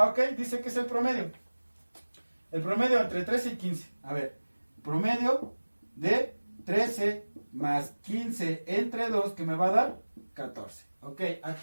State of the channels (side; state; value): both; inverted; correlation -1.00